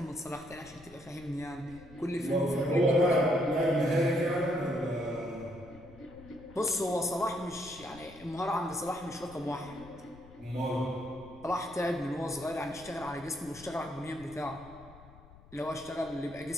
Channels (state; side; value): noise; left; rumble, 21 dB below the sound